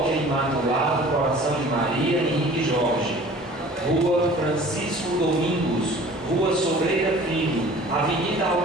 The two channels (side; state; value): both; normal; correlation 0.46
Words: Imaculado Coração de Maria Henrique Jorge, Rua Francisco Domingos, Rua Sobreira Filho, Avenida